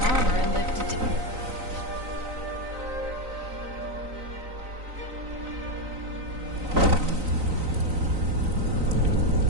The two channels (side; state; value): left; late; 3.9 ms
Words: armor and live to